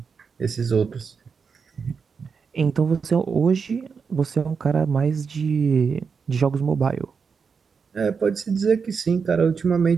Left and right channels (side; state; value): left; quieter; 5.7 dB